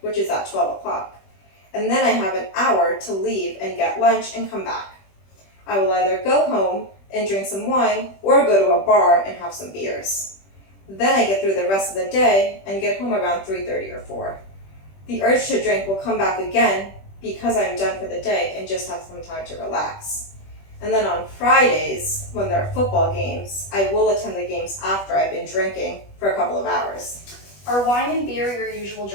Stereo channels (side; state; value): right; late; 21 ms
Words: which is at 12 o'clock. And then I have an hour to leave and get lunch and come back. I will either go home and drink some wine or go to a bar and have some beers. Then I get through the rest of the day and get home around 3:30 or 4. The urge to drink will come back again because I'm done for the day and just have some time to relax. And then on Fridays, when there are football games, I will attend the games after I've been drinking for a couple of hours. Are wine and beer your usual